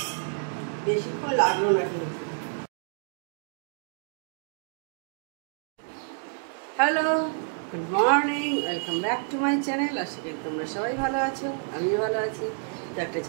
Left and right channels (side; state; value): left; silent; 59 dB below the other